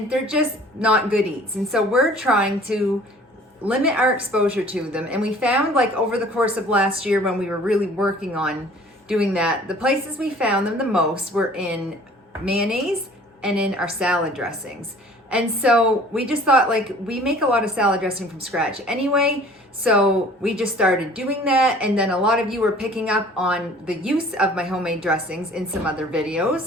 they're just not good eats. And so we're trying to limit our exposure to them. And we found, like, over the course of last year when we were really working on doing that, the places we found them the most were in mayonnaise and in our salad dressings. And so we just thought, like, we make a lot of salad dressing from scratch anyway, so we just started doing that. And then a lot of you were picking up on the use of my homemade dressings in some other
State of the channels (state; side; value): normal; both; correlation 0.50